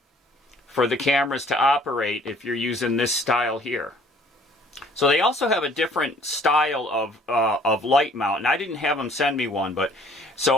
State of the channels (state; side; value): normal; both; correlation 0.56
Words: for the cameras to operate if you're using this style here. So they also have a different style of light mount, and I didn't have them send me one, but